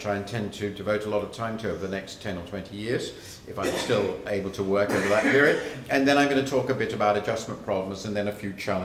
I intend to devote a lot of time to over the next 10 or 20 years, if I'm still able to work over that period. And then I'm going to talk a bit about adjustment problems and then a few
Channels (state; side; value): identical; both; correlation 1.00